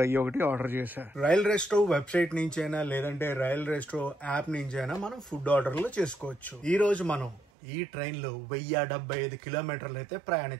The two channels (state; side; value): drops out; left; at 7.5 s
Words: ఒకటి ఆర్డర్ చేశా. రైల్ రెస్టో వెబ్సైట్ నుంచి అయినా, లేదంటే రైల్ రెస్టో యాప్ నుంచి అయినా మనం ఫుడ్ ఆర్డర్లు చేసుకోవచ్చు. ఈ రోజు మనం ఈ ట్రైన్ లో 1075 కిలోమీటర్లు అయితే